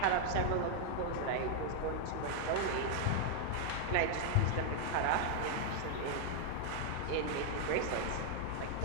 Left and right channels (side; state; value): both; different; correlation 0.00